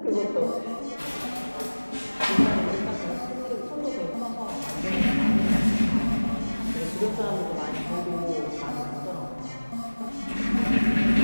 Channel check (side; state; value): both; inverted; correlation -1.00